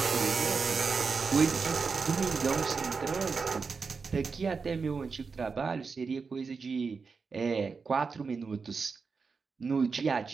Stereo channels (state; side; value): quieter; left; 5.0 dB